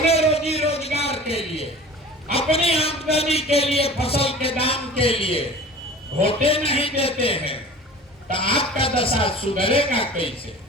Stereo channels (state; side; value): normal; both; correlation 0.41